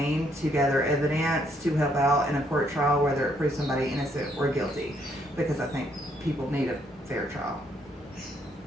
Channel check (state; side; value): normal; both; correlation 0.70